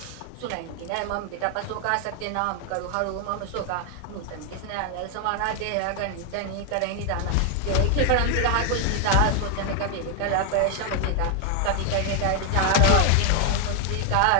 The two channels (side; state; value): both; different; correlation 0.00